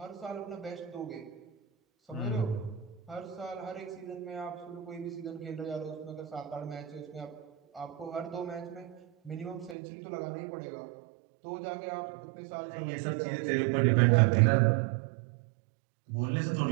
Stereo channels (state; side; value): drops out; left; at 9.8 s